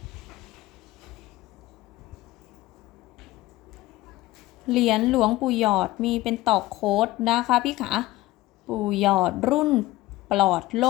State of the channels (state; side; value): quieter; right; 17.6 dB